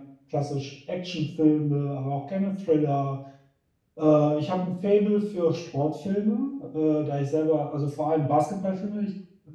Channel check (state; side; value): identical; both; correlation 1.00